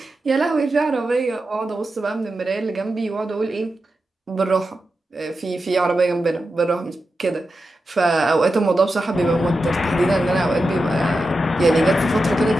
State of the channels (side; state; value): both; normal; correlation 0.90